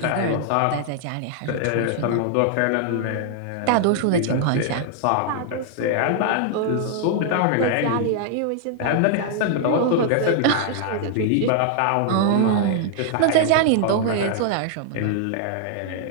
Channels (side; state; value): both; different; correlation 0.00